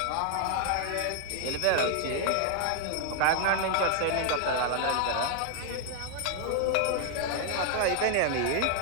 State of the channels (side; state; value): both; different; correlation 0.00